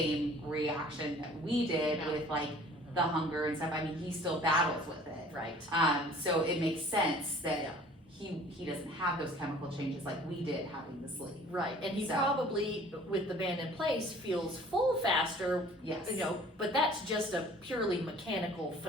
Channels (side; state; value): both; normal; correlation 0.50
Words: reaction that we did No. with like the hunger and stuff. I mean, he still battles with it. Right. So it makes sense that Yeah. he doesn't have those chemical changes like we did having the sleeve. Right. And he So- probably, with the band in place, feels full faster, Yes. you know, but that's just a purely mechanical